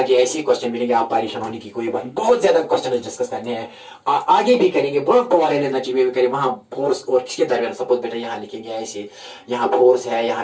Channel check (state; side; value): identical; both; correlation 1.00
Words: ऐसे क्वेश्चन मिलेंगे, आप परेशान होने की कोई बात. बहुत ज्यादा क्वेश्चन डिस्कस करने हैं, आगे भी करेंगे. बहुत पॉवर एनर्जी में भी करेंगे. वहां फोर्स और किसके दरमियान, सपोज बेटा यहाँ लिखेंगे ऐसे, यहाँ फोर्स है,